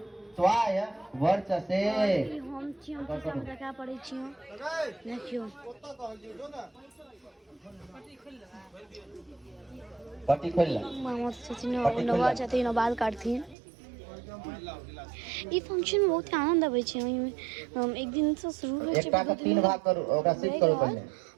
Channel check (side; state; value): left; drops out; at 13.6 s